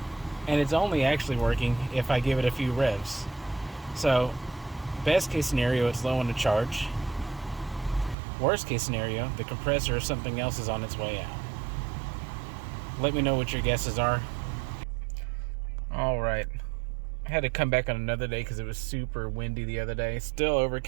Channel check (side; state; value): left; drops out; at 8.2 s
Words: And it's only actually working if I give it a few revs. So, best case scenario, it's low on the charge. Worst case scenario, the compressor or something else is on its way out. Let me know what your guesses are. Alright. I had to come back on another day because it was super windy the other day. Still